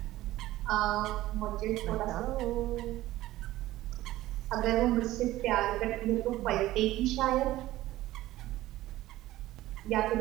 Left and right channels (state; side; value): quieter; left; 16.0 dB